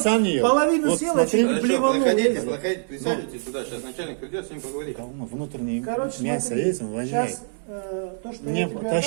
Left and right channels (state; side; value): silent; left; 63 dB below the other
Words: вот ел. половину Вот съел, смотри, а чуть блеванул. проходите, присаживайтесь сюда, сейчас начальник придет, с ним поговорит. внутреннее Короче, мясо смотри, есть, он воняет. сейчас то, что Мне я тебе